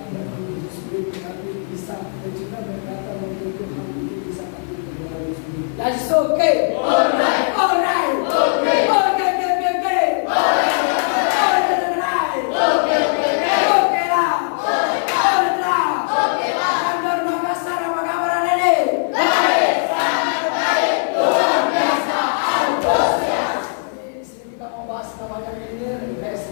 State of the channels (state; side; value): silent; right; 57 dB below the other